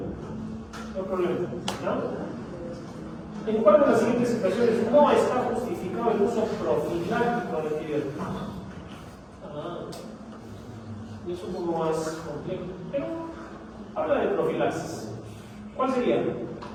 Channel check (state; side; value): identical; both; correlation 1.00